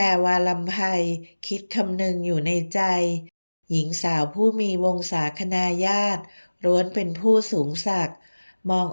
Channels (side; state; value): both; inverted; correlation -1.00